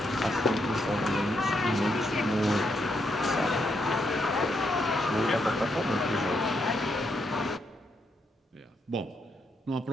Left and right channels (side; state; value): both; normal; correlation 0.78